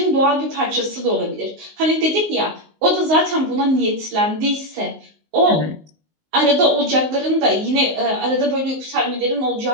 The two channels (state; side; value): late; left; 19 ms